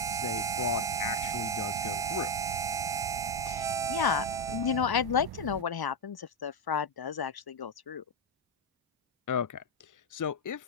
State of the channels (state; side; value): normal; both; correlation 0.05